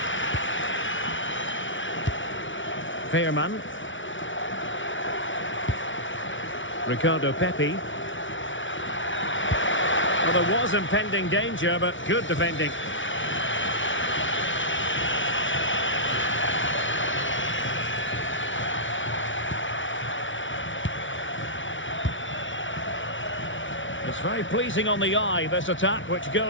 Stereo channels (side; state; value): right; late; 0.56 ms